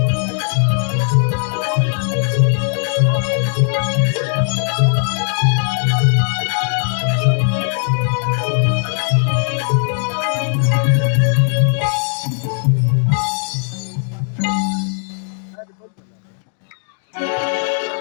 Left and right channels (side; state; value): right; silent; 59 dB below the other